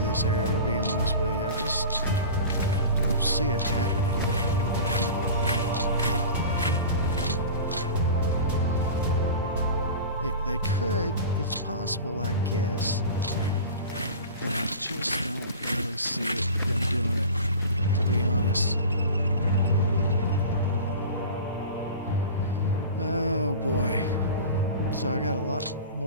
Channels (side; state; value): both; inverted; correlation -0.35